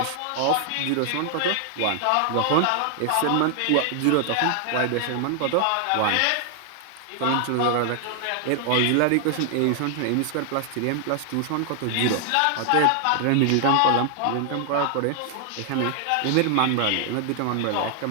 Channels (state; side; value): different; both; correlation 0.00